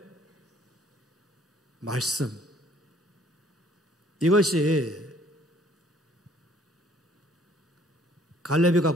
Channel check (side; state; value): both; normal; correlation 0.60